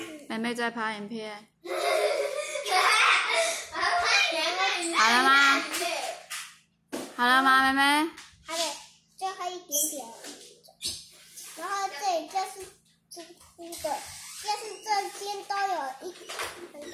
妹妹在拍影片。好了吗？好了吗，妹妹？还得最后一点点。然后这里就是凸的，就是这边都有很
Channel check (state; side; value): identical; both; correlation 1.00